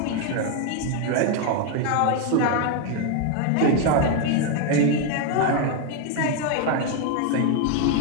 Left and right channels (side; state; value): both; different; correlation 0.01